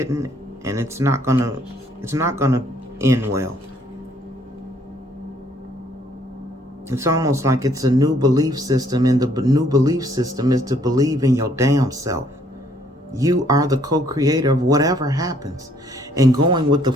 and it's not gonna end well. It's almost like it's a new belief system, and the new belief system is to believe in your damn self. You are the co-creator of whatever happens, and going with the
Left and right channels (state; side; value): normal; both; correlation 0.65